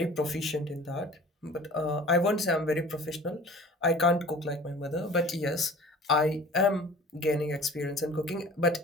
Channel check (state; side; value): normal; both; correlation 0.45